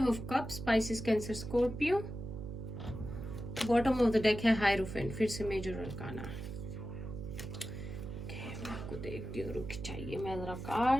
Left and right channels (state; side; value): noise; right; hum, 8 dB below the sound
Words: of cups, Pisces, Cancer, Scorpio. Bottom of the deck है हायरोफेंट, फिर से मेजर अरकाना। मैं आपको देखती हूँ, रुक चाहिए मैं जरा